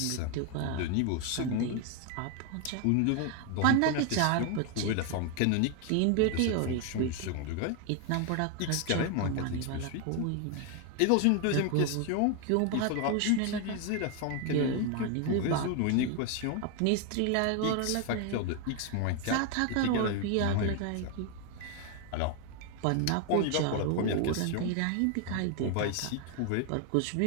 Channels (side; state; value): both; different; correlation 0.01